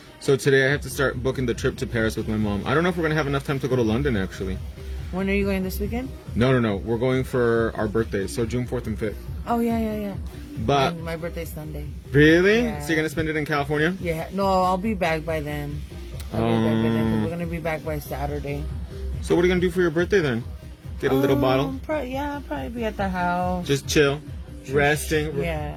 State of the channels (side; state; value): both; identical; correlation 1.00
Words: So today I have to start booking the trip to Paris with my mom. I don't know if we're going to have enough time to go to London, actually. When are you going this weekend? No. We're going for our birthdays, so June 4th and 5th. Oh, yeah. But... And my birthday's Sunday. Really? Yeah. So you're going to spend it in California? Yeah. No, I'll be back by then. We're going to be back by Saturday. So what are you going to do for your birthday then? Get a little bottle? I'll probably be at the house. Just chill, resting,